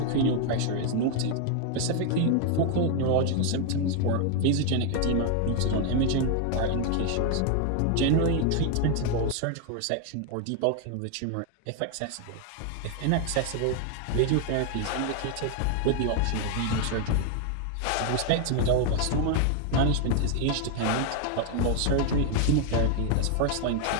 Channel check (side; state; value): both; different; correlation 0.00